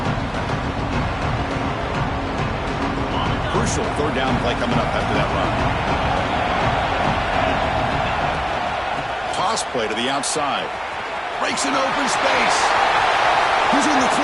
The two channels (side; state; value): both; identical; correlation 1.00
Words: Crucial 3rd down play coming up after that run. Toss play to the outside. Breaks an open space. He's in the